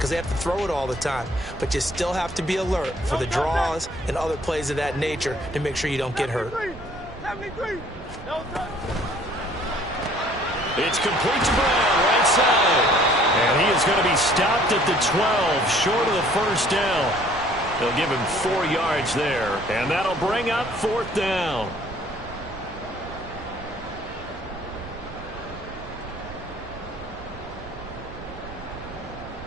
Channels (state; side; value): noise; right; rumble, 16 dB below the sound